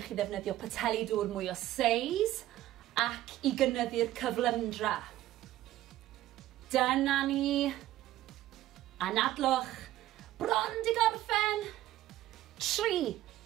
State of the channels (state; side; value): quieter; left; 14.5 dB